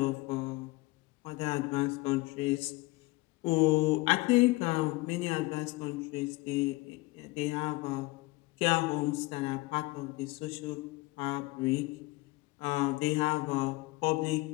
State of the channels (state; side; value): quieter; right; 22.1 dB